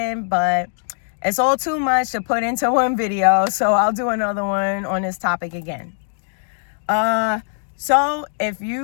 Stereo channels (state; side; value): silent; right; 59 dB below the other